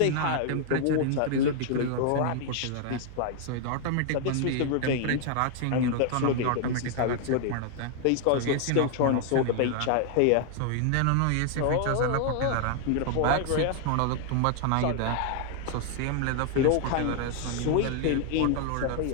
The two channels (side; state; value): both; different; correlation 0.00